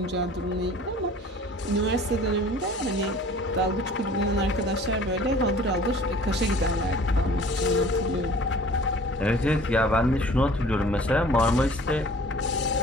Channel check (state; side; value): normal; both; correlation 0.48